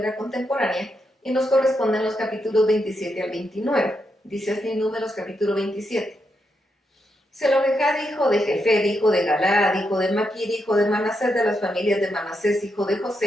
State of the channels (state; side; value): normal; both; correlation 0.83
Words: Contemporánea y nos corresponden los capítulos 27 al 29. Dice así Números capítulo 27. Zelofehad, hijo de Jefer, hijo de Galaad, hijo de Maquir, hijo de Manasés, de las familias de Manasés, hijo de